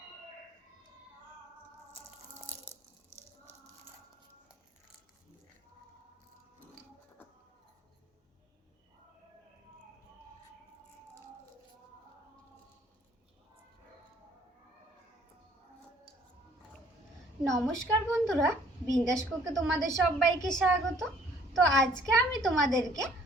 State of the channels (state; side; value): normal; both; correlation 0.59